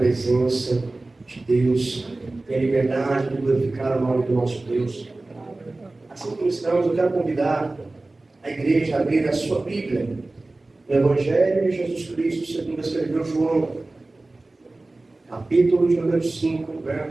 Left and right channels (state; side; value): quieter; left; 3.0 dB